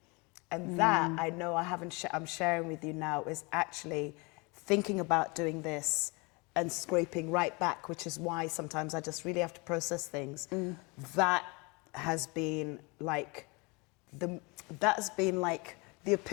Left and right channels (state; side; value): quieter; right; 28.2 dB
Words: And that, I know I'm sharing with you now, is actually thinking about doing this and scraping right back, which is why sometimes I just really have to process things. That has been like the